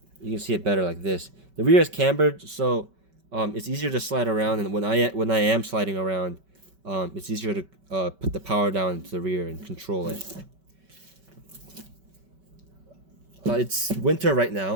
You can see it better like this. The rear is cambered, so it's easier to slide around, and when I am sliding around, it's easier to put the power down to the rear and control it. It's winter right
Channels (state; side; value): late; left; 5.2 ms